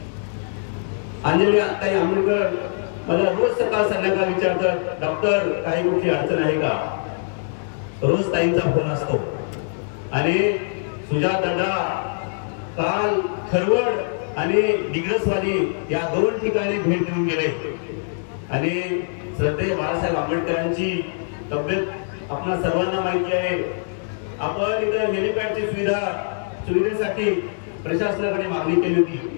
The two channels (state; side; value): silent; right; digital silence